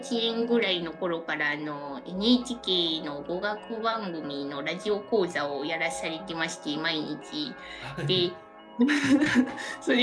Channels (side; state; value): both; identical; correlation 1.00